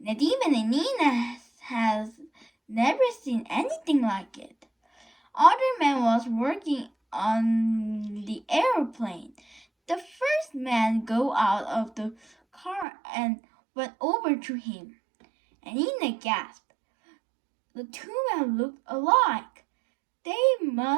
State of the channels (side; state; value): left; drops out; at 12.9 s